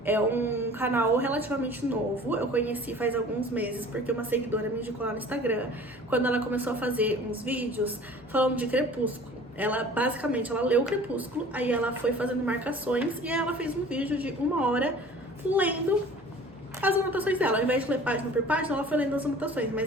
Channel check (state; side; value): normal; both; correlation 0.46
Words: É um canal relativamente novo, eu conheci faz alguns meses porque uma seguidora me indicou lá no Instagram, quando ela começou a fazer uns vídeos falando de Crepúsculo. Ela, basicamente, ela leu Crepúsculo, aí ela foi fazendo marcações e aí ela fez um vídeo de 1 hora lendo as anotações dela. Ao invés de ler página por página, ela foi lendo as anotações,